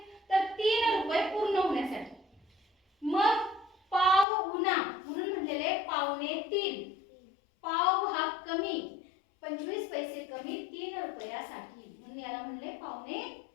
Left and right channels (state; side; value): drops out; right; at 4.2 s